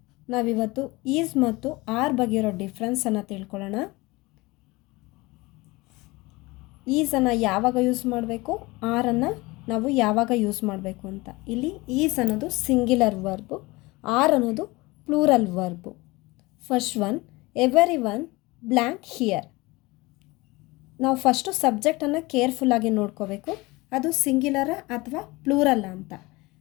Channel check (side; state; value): right; quieter; 22.5 dB